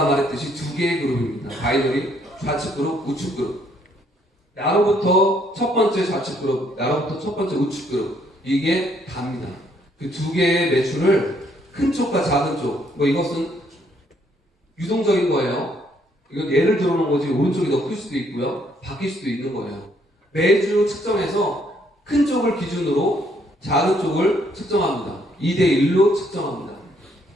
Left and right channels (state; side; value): normal; both; correlation 0.68